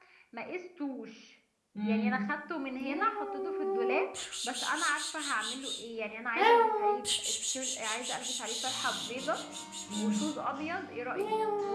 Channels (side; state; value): both; identical; correlation 1.00